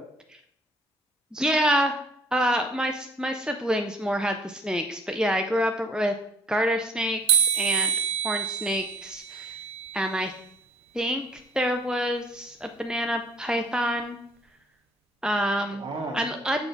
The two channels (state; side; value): normal; both; correlation 0.55